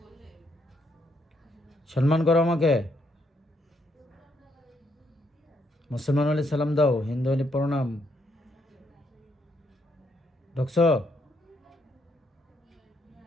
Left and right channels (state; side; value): normal; both; correlation 0.74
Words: সম্মান করো আমাকে। মুসলমান হলে সালাম দাও, হিন্দু হলে প্রণাম। ঢুকছো?